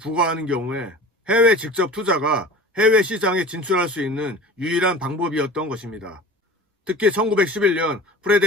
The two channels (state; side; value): normal; both; correlation 0.39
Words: 경우에 해외 직접 투자가 해외 시장에 진출할 수 있는 유일한 방법이었던 것입니다. 특히 1911년